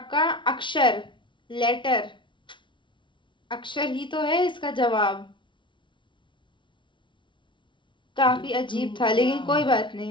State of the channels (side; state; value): right; late; 0.24 ms